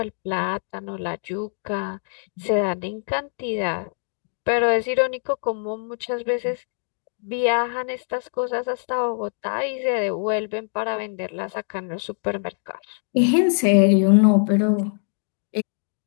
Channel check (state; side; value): silent; right; 63 dB below the other